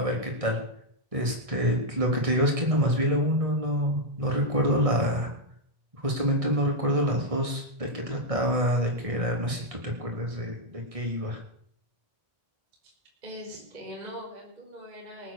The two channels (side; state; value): left; late; 1.6 ms